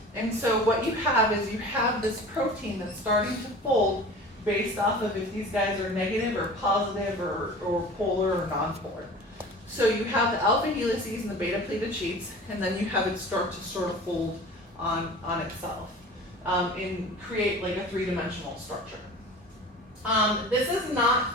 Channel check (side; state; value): both; normal; correlation 0.39